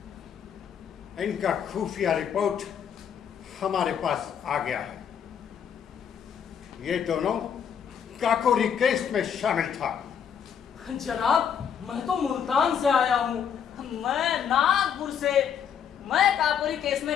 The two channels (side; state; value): right; quieter; 8.0 dB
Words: इनका खुफिया रिपोर्ट हमारे पास आ गया है। ये दोनों काकोरी केस में शामिल था। जनाब, मैं तो मुल्तान से आया हूँ। मैं नागपुर से। मैं काकोरी केस